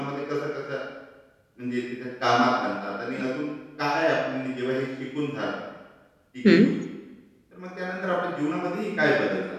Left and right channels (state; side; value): identical; both; correlation 1.00